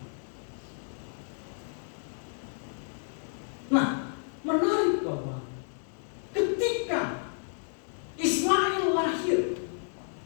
Nah, menarik bahwa ketika Ismail lahir,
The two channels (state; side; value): silent; right; digital silence